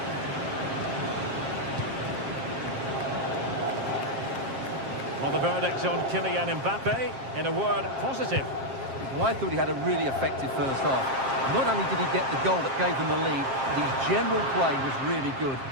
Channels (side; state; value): left; late; 7.5 ms